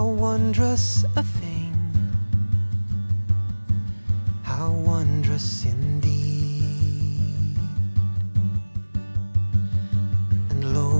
wondrous a thing, how wondrous indeed. And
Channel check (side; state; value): both; inverted; correlation -1.00